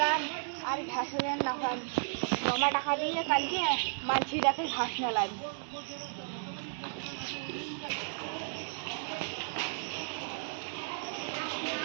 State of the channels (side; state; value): left; silent; digital silence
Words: আর ঘাস না হয় জমা টাকা দিয়ে কালকে মানছিটাকে ঘাস মেলাম